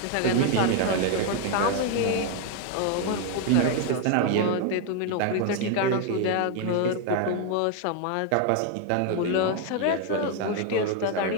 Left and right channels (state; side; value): different; both; correlation 0.01